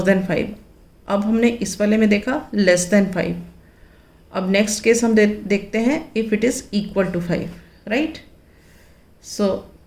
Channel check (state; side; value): identical; both; correlation 1.00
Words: than 5. अब हमने इस वाले में देखा लेस देन 5. अब नेक्स्ट केस हम देखते हैं if it is equal to 5. Right, so